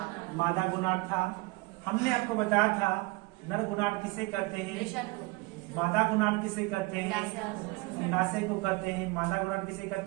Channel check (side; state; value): left; quieter; 24.5 dB